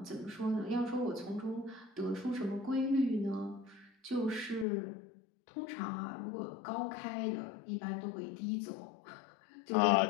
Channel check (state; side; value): drops out; right; at 4.7 s